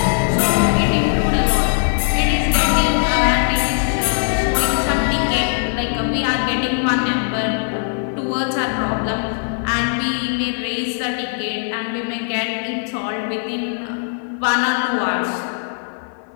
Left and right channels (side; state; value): right; silent; 59 dB below the other